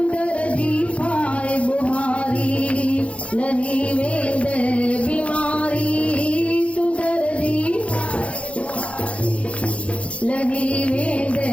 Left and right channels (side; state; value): right; late; 0.062 ms